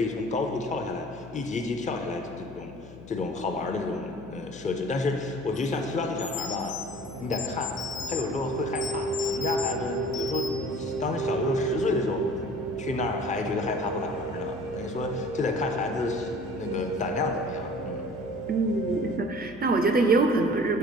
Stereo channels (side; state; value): left; noise; hum, 17 dB below the sound